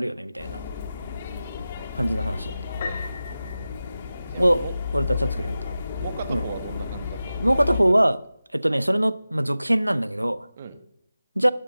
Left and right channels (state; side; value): inverted; both; correlation -0.94